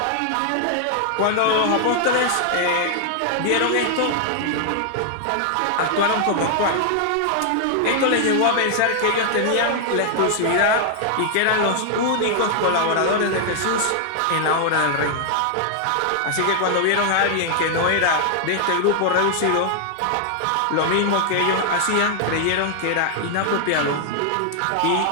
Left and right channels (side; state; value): both; different; correlation 0.00